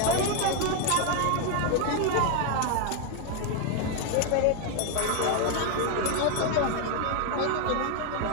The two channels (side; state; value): both; different; correlation 0.00